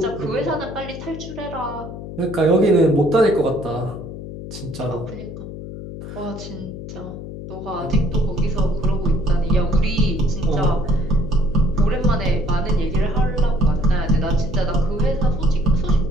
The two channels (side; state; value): left; noise; hum, 10 dB below the sound